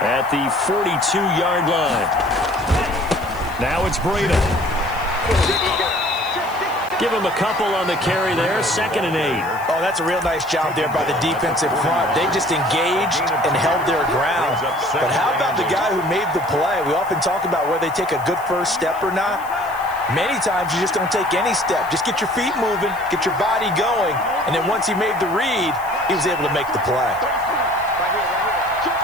the 42-yard line. Now it's Breida. Give him a couple on the carry there. 2nd and 8. Oh, that's a real nice job there by the defensive front. They just engaged and held their ground. But how about the guy who made the play? We often talk about whether they take a good first step or not. Many times you just don't take any step. Just get your feet moving, get your body going, and then once he made the read, he was able to make the play.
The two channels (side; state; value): left; noise; hiss, 21 dB below the sound